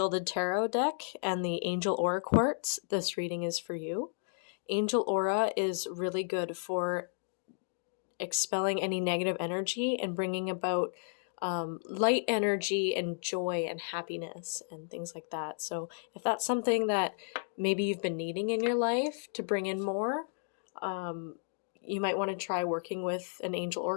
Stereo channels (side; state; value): right; silent; digital silence